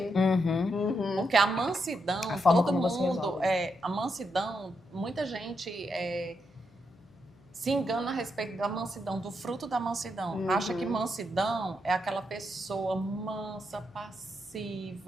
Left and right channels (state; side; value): noise; left; hum, 29 dB below the sound